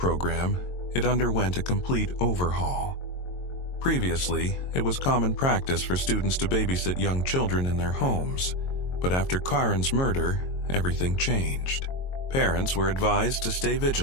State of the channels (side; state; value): right; late; 22 ms